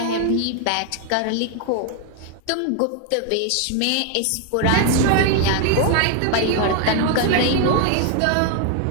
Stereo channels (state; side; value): different; both; correlation 0.01